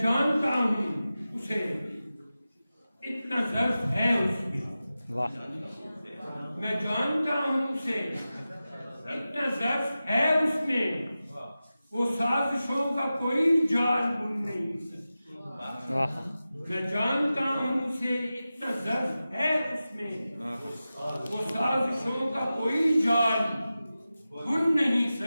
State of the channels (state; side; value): inverted; both; correlation -0.94